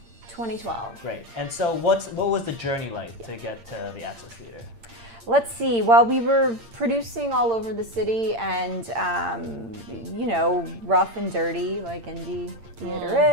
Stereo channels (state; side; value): late; left; 8.7 ms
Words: 2012. Right. And so what was the journey like to get to the Access Theater? Let's see. Well, we were producing all over the city, and you know, rough and dirty like indie theater